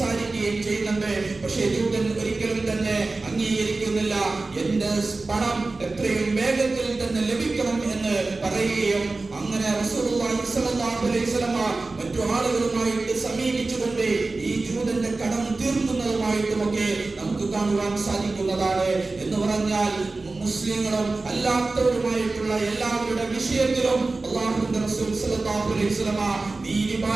ചെയ്യുന്നുണ്ട്. പക്ഷേ ജൂതൻ ഒരിക്കലും തന്നെ അംഗീകരിക്കുന്നില്ല. എന്റെ പണം എത്രയും വേഗത്തിൽ തന്നെ ലഭിക്കണം എന്ന് പറയുകയും അങ്ങനെ റസൂലുള്ളാഹി സ്വല്ലല്ലാഹു അലൈഹി വസല്ലം മറ്റു ആളുകളുമായിട്ട് സമീപിച്ചുകൊണ്ട് ഈ ജൂതന്റെ കടം തീർക്കുന്നതുമായിട്ടുമൊക്കെ നമുക്ക് കാണുവാൻ സാധിക്കുന്നതാണ്. എന്ന് പറഞ്ഞാൽ മുസ്ലിങ്ങളും അല്ലാത്തവരുമായിട്ടുള്ള എല്ലാവരുടെ വിഷയത്തിലും അല്ലാഹുവിന്റെ റസൂൽ സല്ലല്ലാഹു അലൈഹി വസല്ലം നീതി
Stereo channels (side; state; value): left; quieter; 3.5 dB